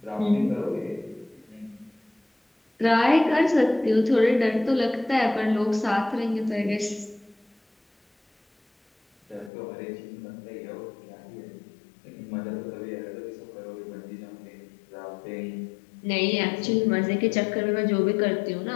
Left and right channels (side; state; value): right; drops out; at 9.5 s